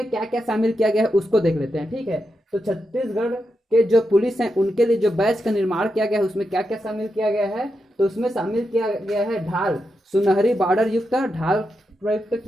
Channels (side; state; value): both; normal; correlation 0.86